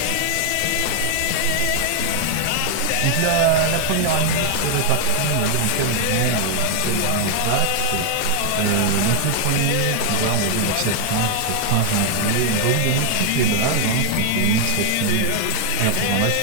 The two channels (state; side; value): different; both; correlation 0.00